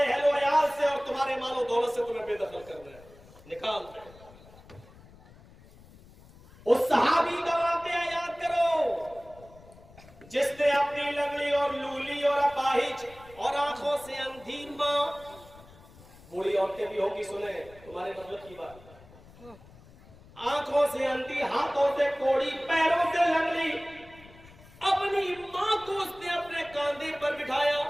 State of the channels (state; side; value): noise; left; rumble, 23 dB below the sound